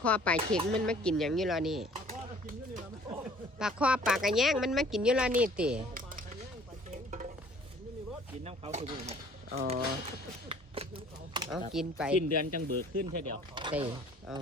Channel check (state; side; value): normal; both; correlation 0.54